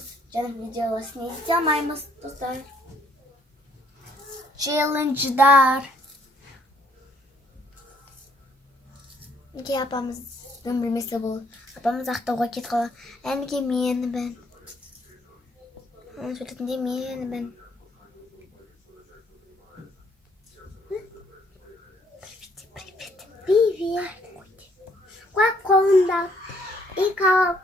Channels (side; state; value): both; normal; correlation 0.66